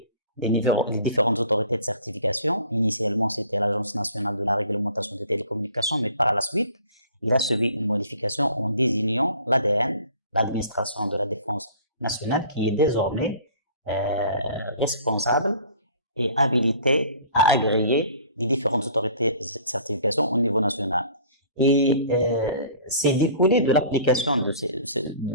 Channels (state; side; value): inverted; both; correlation -0.49